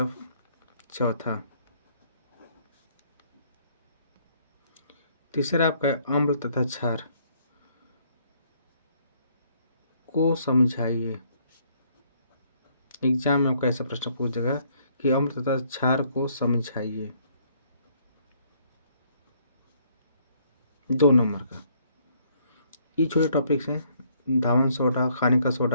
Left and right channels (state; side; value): inverted; both; correlation -0.66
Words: चौथा, तीसरा आपका है अम्ल तथा क्षार को समझाइए। एग्जाम में आपका ऐसा प्रश्न पूछेगा कि अम्ल तथा क्षार को समझाइए, 2 नंबर का। ये छोटे टॉपिक्स हैं, धावन सोडा, खाने का